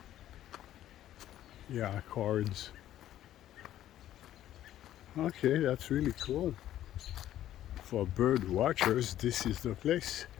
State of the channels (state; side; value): quieter; right; 12.5 dB